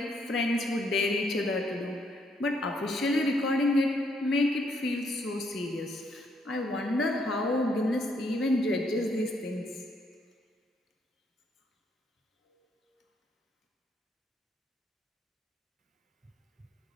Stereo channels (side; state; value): both; normal; correlation 0.72